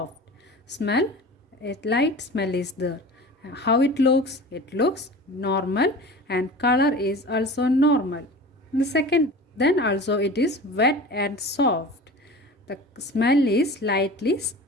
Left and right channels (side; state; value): both; normal; correlation 0.37